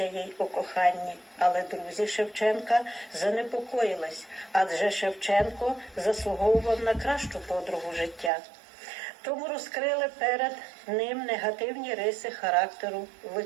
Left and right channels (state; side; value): drops out; left; at 8.3 s